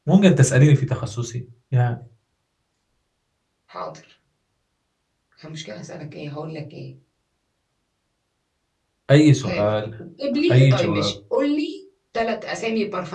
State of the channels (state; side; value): identical; both; correlation 1.00